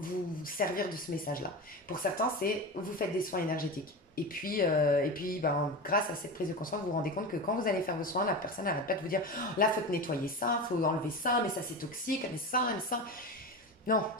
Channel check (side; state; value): both; normal; correlation 0.24